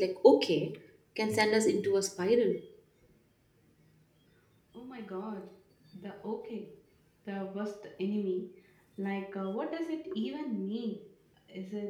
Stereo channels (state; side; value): identical; both; correlation 1.00